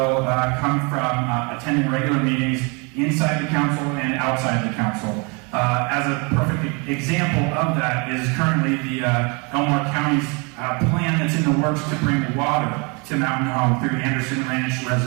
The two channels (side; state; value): left; quieter; 31.5 dB